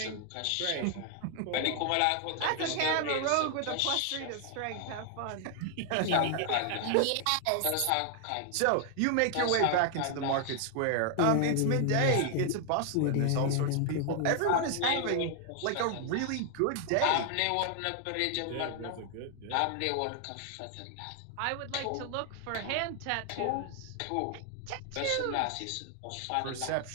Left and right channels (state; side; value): different; both; correlation 0.00